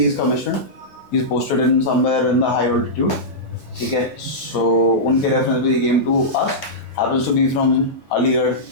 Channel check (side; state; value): both; normal; correlation -0.13